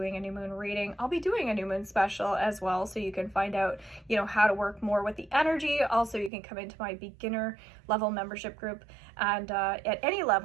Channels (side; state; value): left; drops out; at 6.3 s